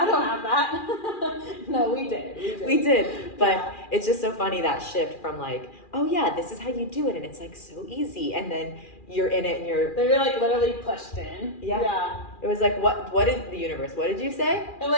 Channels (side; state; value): right; late; 2.4 ms